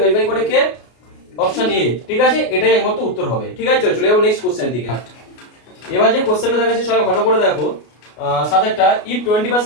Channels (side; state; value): right; late; 33 ms